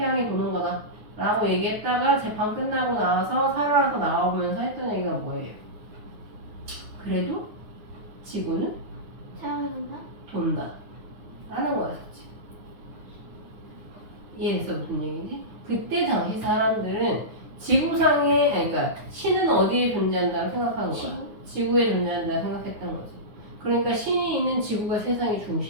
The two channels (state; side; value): late; left; 9.4 ms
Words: 도는 거다. 라고 얘기했다가 재판 끝나고 나와서 살아서 나오면서 했던 얘기가 뭐예요? 그래도 지구는 사랑한다. 돈다. 라는 거였지. 이해했어? 무슨 얘기지? 그때 당시 사람들은 지구상에, 아니, 그러니까 신은 어디에 존재한다고 생각한 거야? 지구에 존재한다고 생각했던 거지. 그러니까 신이 있는 지구가 세상의